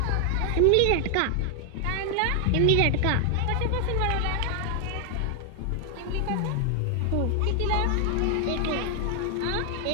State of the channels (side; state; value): both; different; correlation 0.00